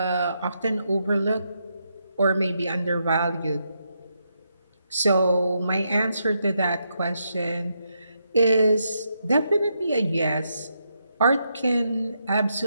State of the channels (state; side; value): inverted; both; correlation -0.81